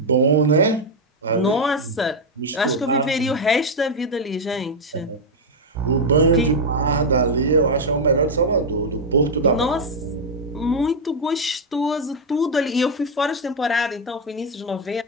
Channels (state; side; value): normal; both; correlation 0.02